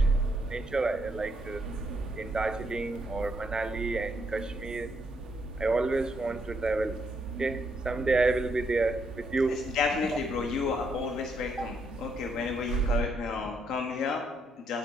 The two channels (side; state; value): both; normal; correlation 0.75